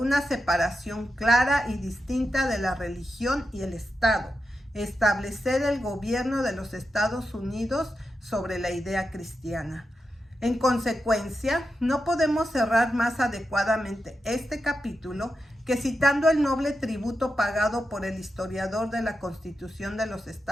separación clara y distinta de la religión y el Estado, establecer el gobierno de los Estados Unidos sobre la idea cristiana. En consecuencia, no podemos cerrar más adecuadamente este capítulo que citando el noble tributo pagado por el historiador de la Constitución de los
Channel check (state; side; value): normal; both; correlation 0.88